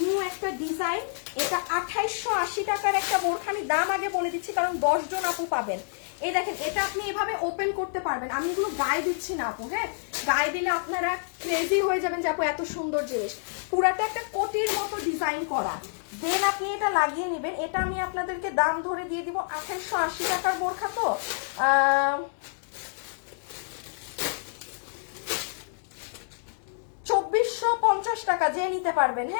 একটা ডিজাইন, এটা 2,880 টাকার একটা বোরখা। আমি দাম আগে বলে দিচ্ছি কারণ 10 জন আপু পাবেন। এই দেখেন, এটা আপনি এভাবে ওপেন করতে পারবেন, আমি এগুলো গায়ে দিচ্ছি না আপু, হ্যাঁ গায়ে দিলে আপনারা ক্রেজি হয়ে যাবেন যে আপু এত সুন্দর জিনিস। পুরাটা একটা কোটির মতো ডিজাইন করা, দেন আপনি এটা লাগিয়ে নেবেন। এটা আমি আপনাদেরকে দাম ধরে দিয়ে দিব 2,880 টাকার বোরখা, তো 2,450 টাকা যে নিতে পারবেন,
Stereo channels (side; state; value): right; silent; digital silence